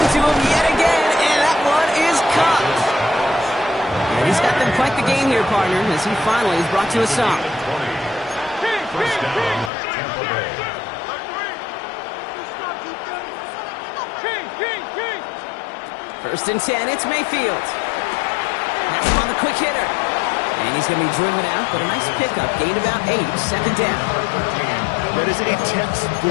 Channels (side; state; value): right; drops out; at 9.7 s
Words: to him yet again, and that one is caught. And he's got them quite the gain here, partner, as he finally is brought to a stop. 1st down, Tampa Bay. 1st and 10, it's Mayfield. That's him on the quick hitter. And he's going to be driven out, but a nice pickup. Gained about 8, 2nd down. That is a